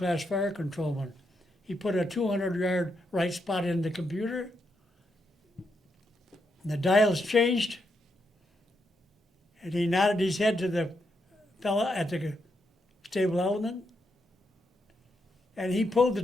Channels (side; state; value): both; normal; correlation 0.81